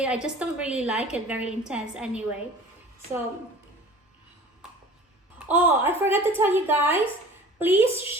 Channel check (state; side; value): normal; both; correlation 0.44